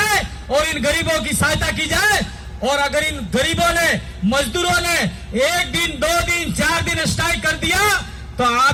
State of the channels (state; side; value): identical; both; correlation 1.00